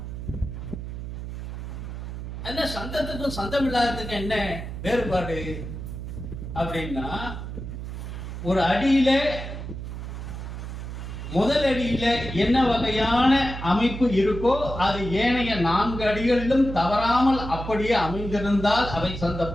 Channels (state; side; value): noise; right; hum, 8 dB below the sound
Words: என்ன சந்தத்துக்கும் சந்தம் இல்லாததுக்கும் என்ன வேறுபாடு அப்படின்னா, ஒரு அடியில முதல் அடியில என்ன வகையான அமைப்பு இருக்கோ அது ஏனைய 4 அடிகளிலும் தவறாமல் அப்படியே அமைந்திருந்தால் அவை சந்த